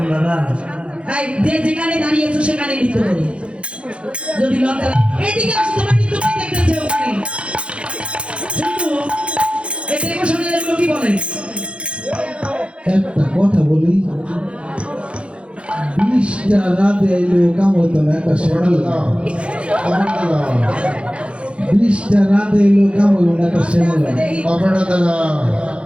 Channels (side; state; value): left; late; 0.059 ms